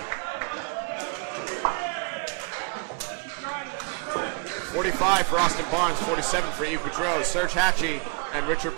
45 for Austin Barnes, 47 for Yves Boudreau. Serge Hachey and Richard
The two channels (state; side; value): quieter; left; 34.9 dB